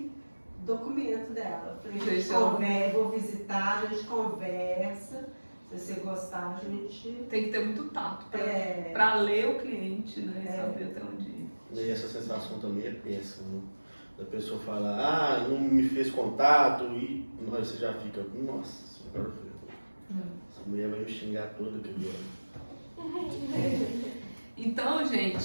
documento dela. Eu falei, a gente conversa, vou visitar, a gente conversa. Se você gostar, a gente. Tem que ter muito tato É. pra ler o cliente, né? E saber até onde ir. E essa sensação também é péssima. Né? Da pessoa falar, ah, não me fez contato, e você já fica, nossa senhora, essa mulher vai me xingar toda que Então,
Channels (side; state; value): both; inverted; correlation -1.00